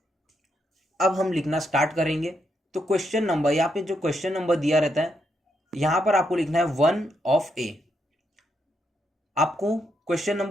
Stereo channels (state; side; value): normal; both; correlation 0.79